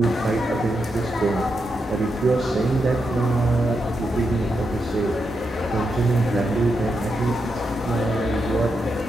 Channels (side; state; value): both; normal; correlation 0.84